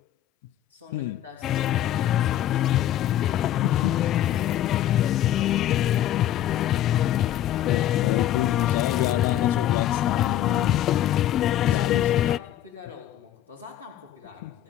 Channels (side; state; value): right; quieter; 12.3 dB